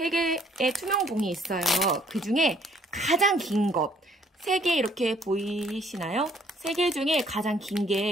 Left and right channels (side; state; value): both; normal; correlation 0.63